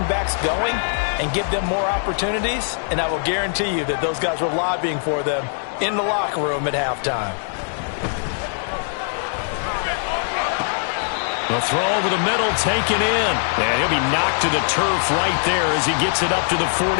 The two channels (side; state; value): right; silent; digital silence